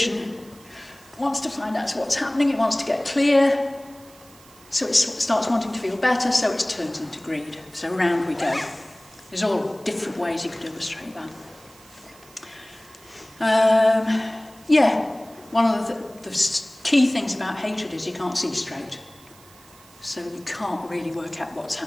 wants to find out what's happening, it wants to get clear, so it starts wanting to feel better, so it turns into greed. So round we go. There's all different ways you could illustrate that. One of the key things about hatred is you can't see straight. So you can't really work out what's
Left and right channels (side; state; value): right; noise; hiss, 24 dB below the sound